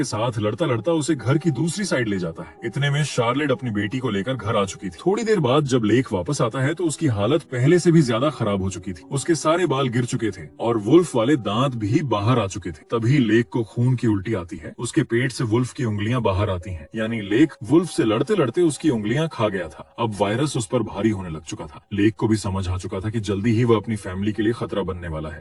साथ लड़ता लड़ता उसे घर की दूसरी साइड ले जाता है। इतने में शार्लेट अपनी बेटी को लेकर घर आ चुकी थी। थोड़ी देर बाद जब लेक वापस आता है तो उसकी हालत पहले से भी ज्यादा खराब हो चुकी थी। उसके सारे बाल गिर चुके थे और वुल्फ वाले दांत भी बाहर आ चुके थे। तभी लेक को खून की उल्टी आती है। उसके पेट से वुल्फ की उंगलियां बाहर आती हैं, यानी लेक वुल्फ से लड़ते लड़ते उसकी उंगलियां खा गया था। अब वायरस उस पर भारी होने लग चुका था। लेक को भी समझ आ चुका था कि जल्दी ही वह अपनी फैमिली के लिए खतरा बनने वाला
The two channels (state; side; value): identical; both; correlation 1.00